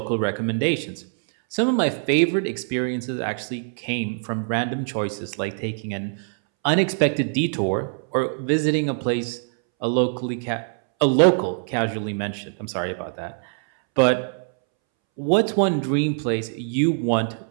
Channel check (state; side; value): silent; left; 63 dB below the other